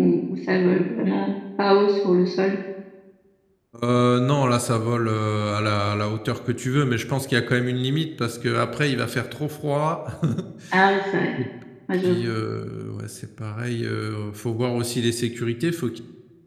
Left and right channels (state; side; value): identical; both; correlation 1.00